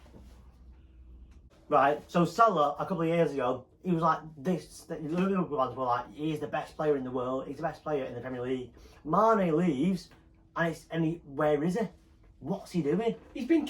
Right, so Salah, a couple of years ago, he was like this. The Liverpool fans were like, he's the best player in the world. He's the best player in the Premier League. Mane leaves, and where is he? What's he doing? He's been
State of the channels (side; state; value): both; identical; correlation 1.00